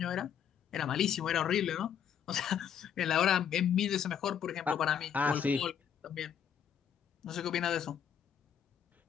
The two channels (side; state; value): right; quieter; 8.4 dB